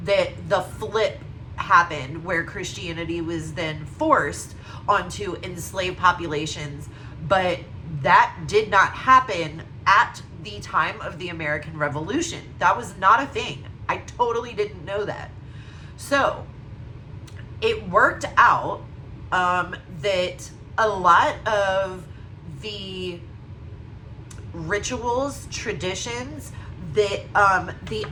that the flip happened where Christianity was then forced onto enslaved populations. But that did not happen at the time of the American Revolution. That was not a thing. I totally didn't know that. So it worked out that a lot of the rituals, traditions that the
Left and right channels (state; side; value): identical; both; correlation 1.00